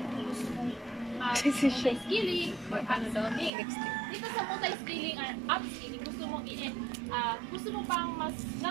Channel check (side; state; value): left; drops out; at 3.5 s